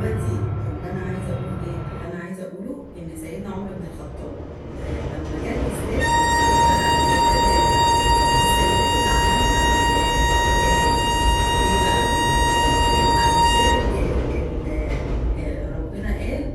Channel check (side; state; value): both; identical; correlation 1.00